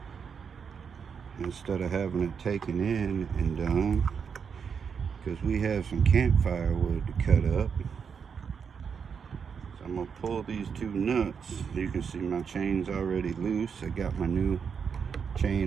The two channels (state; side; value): quieter; left; 6.5 dB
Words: instead of having it taken in and done, because we have some campfire wood to cut up. So I'm gonna pull these two nuts. You can see my chain's already loose. I got my new